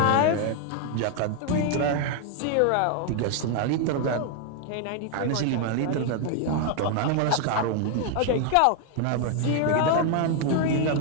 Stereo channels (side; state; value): both; different; correlation 0.00